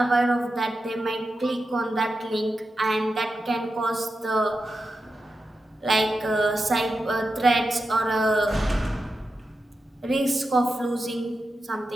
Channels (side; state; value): both; normal; correlation 0.90